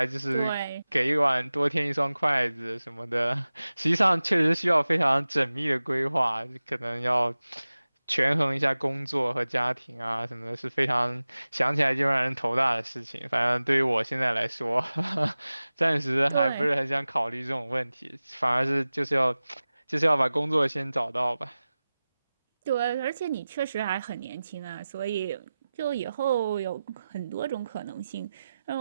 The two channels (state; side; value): inverted; both; correlation -0.96